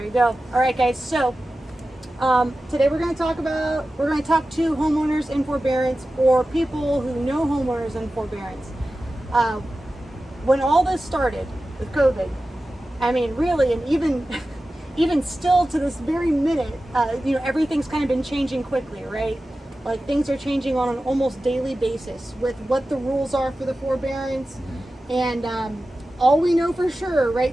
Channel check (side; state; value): both; normal; correlation 0.94